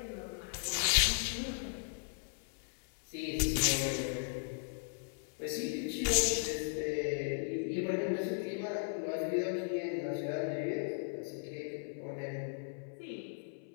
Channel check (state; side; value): silent; right; 53 dB below the other